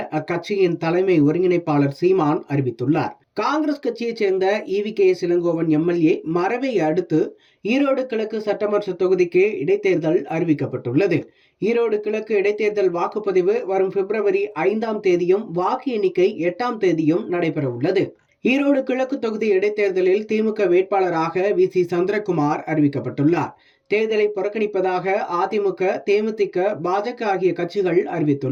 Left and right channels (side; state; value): both; identical; correlation 1.00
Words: அக்கட்சியின் தலைமை ஒருங்கிணைப்பாளர் சீமான் அறிவித்துள்ளார். காங்கிரஸ் கட்சியைச் சேர்ந்த EVKS இளங்கோவன் MLA மறைவை அடுத்து ஈரோடு கிழக்கு சட்டமன்ற தொகுதிக்கு இடைத்தேர்தல் அறிவிக்கப்பட்டுள்ளது. ஈரோடு கிழக்கு இடைத்தேர்தல் வாக்குப்பதிவு வரும் February 5 வாக்கு எண்ணிக்கை 8 நடைபெற உள்ளது. ஈரோடு கிழக்கு தொகுதி இடைத்தேர்தலில் திமுக வேட்பாளராக VC சந்திரகுமார் அறிவிக்கப்பட்டுள்ளார். தேர்தலை புறக்கணிப்பதாக அதிமுக, தேமுதிக, பாஜக ஆகிய கட்சிகள்